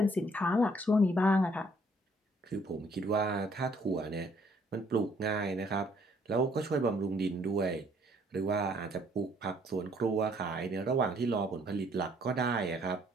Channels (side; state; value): both; normal; correlation 0.63